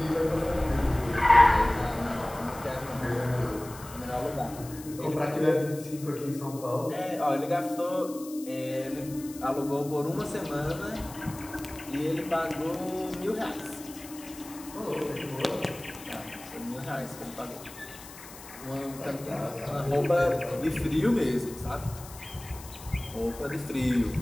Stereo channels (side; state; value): left; noise; hiss, 16 dB below the sound